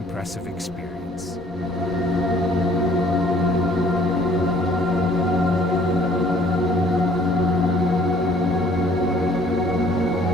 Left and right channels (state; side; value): normal; both; correlation 0.57